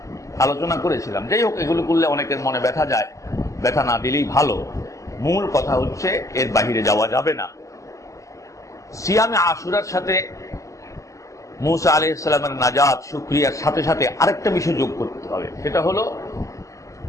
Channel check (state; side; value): late; right; 0.16 ms